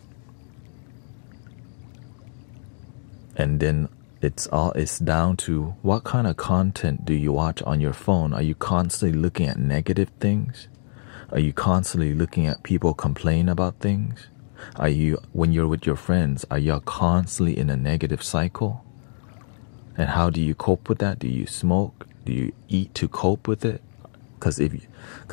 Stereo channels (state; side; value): silent; right; 62 dB below the other